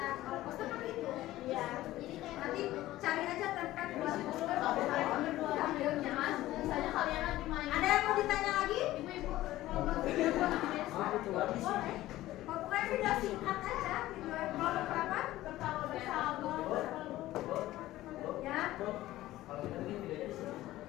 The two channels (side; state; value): right; quieter; 15.8 dB